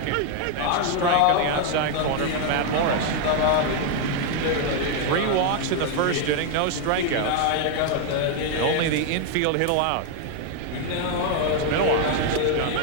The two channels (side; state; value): both; different; correlation 0.00